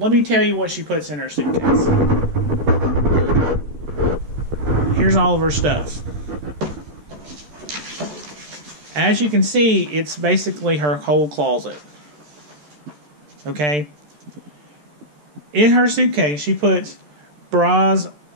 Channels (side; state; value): left; late; 13 ms